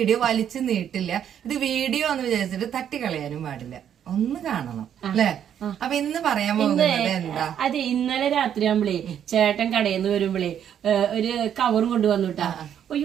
വലിച്ചു നീട്ടില്ല. ഇത് വീഡിയോ എന്ന് വിചാരിച്ചിട്ട് തട്ടിക്കളയാനും പാടില്ല. ഒന്ന് കാണണം അല്ലേ? അപ്പൊ ഇന്ന് പറയാൻ പോകുന്നത് എന്താ? അതെ, ഇന്നലെ രാത്രി ആകുമ്പളേ ചേട്ടൻ കടയിൽ നിന്ന് വരുമ്പളേ ഒരു കവറും കൊണ്ടുവന്നുട്ടാ.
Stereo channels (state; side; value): quieter; left; 9.3 dB